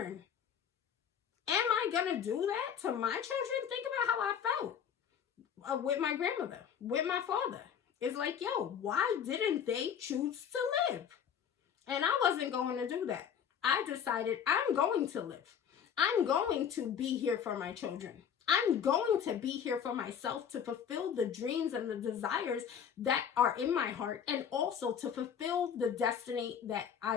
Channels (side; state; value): right; quieter; 8.1 dB